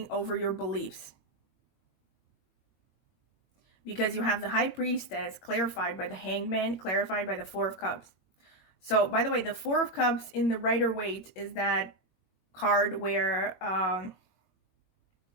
over your beliefs. Because you have the High Priestess clarified by the Hanged Man, clarified by the Four of Cups. So, by the way, the Four of Cups in the Rider-Waite is that card where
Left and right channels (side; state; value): right; late; 21 ms